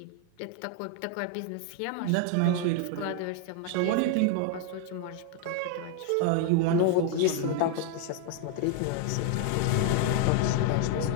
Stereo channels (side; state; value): both; different; correlation 0.00